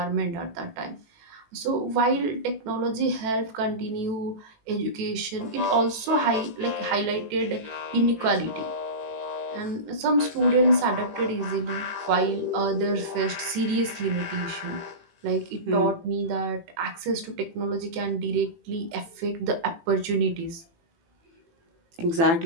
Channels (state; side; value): late; left; 18 ms